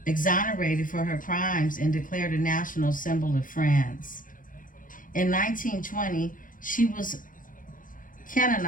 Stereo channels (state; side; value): late; right; 0.39 ms